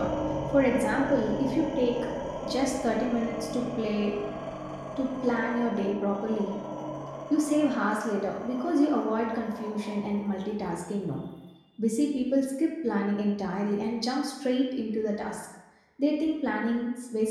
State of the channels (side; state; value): both; identical; correlation 1.00